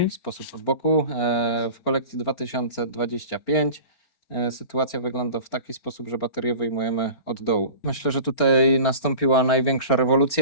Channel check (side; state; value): right; late; 4.4 ms